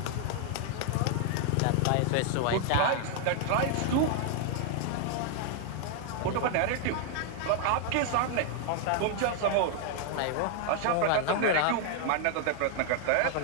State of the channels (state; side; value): different; both; correlation 0.00